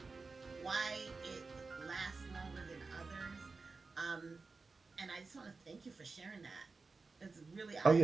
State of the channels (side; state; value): left; quieter; 4.1 dB